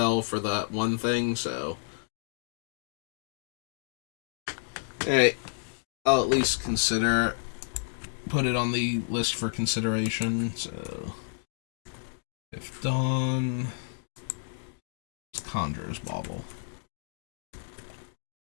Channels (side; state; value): right; silent; digital silence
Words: for that one thing, so. Hey, I'll at least put it on the list for consideration, so. If Dawn. It's Conjurer's Bauble.